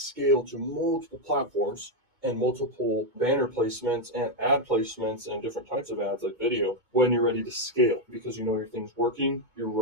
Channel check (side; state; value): left; late; 2.2 ms